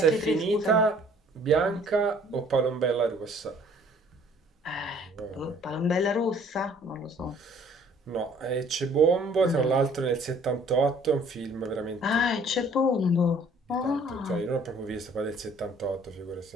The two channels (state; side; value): normal; both; correlation 0.56